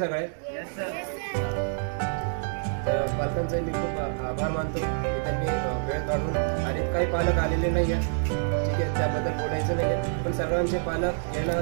तर पालकांचे मी खूप आभार मानतो की त्यांनी वेळ काढून, आणि काही पालक आलेले नाही आहेत, ठीक आहे, त्याबद्दल बोलायचं नाही आहे, पण सर्वांचे पालक येणं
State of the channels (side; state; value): left; silent; digital silence